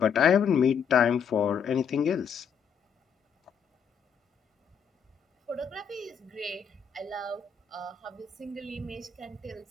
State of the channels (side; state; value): right; quieter; 7.0 dB